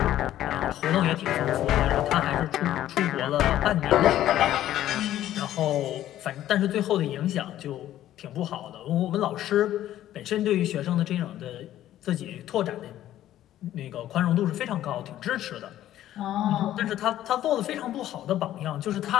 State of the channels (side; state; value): right; quieter; 12.9 dB